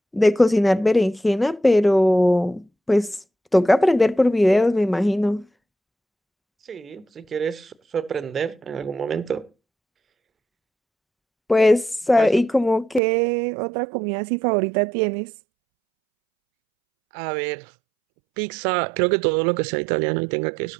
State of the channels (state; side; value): drops out; left; at 13.0 s